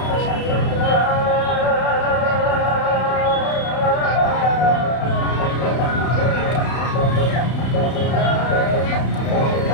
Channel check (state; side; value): late; right; 32 ms